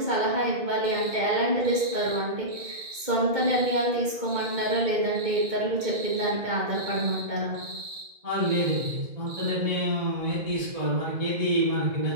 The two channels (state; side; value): late; left; 2.2 ms